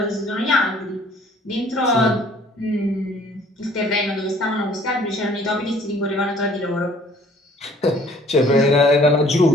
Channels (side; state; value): both; normal; correlation 0.56